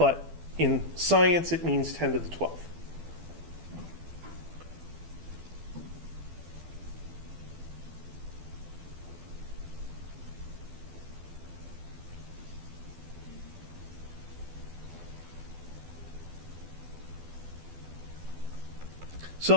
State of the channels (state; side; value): late; left; 12 ms